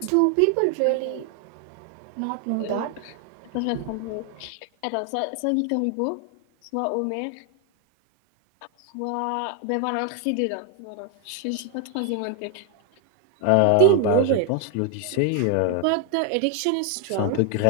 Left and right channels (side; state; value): both; different; correlation 0.01